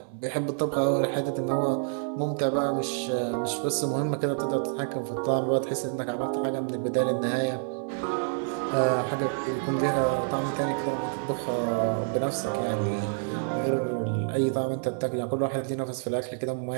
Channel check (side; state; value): left; silent; 59 dB below the other